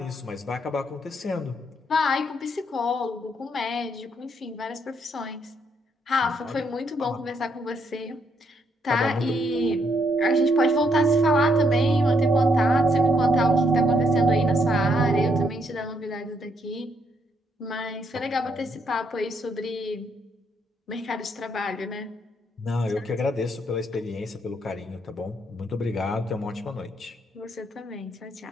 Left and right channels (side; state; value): both; normal; correlation 0.74